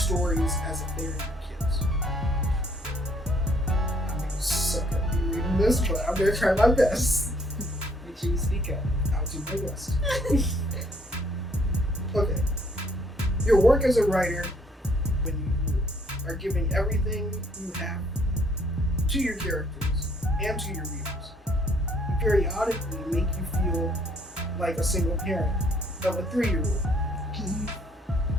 as if they're your kids. I'm gonna suck at me reading this, but I'm gonna try my best. Make sure you speak up. I'll do my best. Okay. Your work as a writer, when you are giving everything you have to your characters and to your readers, you periodically make you feel like a single parent of a 3-year-old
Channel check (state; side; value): normal; both; correlation 0.64